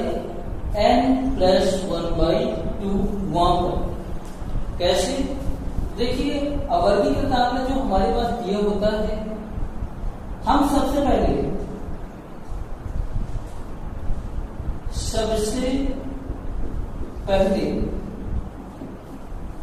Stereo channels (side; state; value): both; identical; correlation 1.00